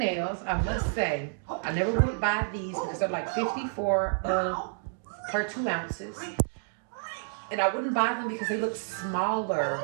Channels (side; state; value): left; silent; digital silence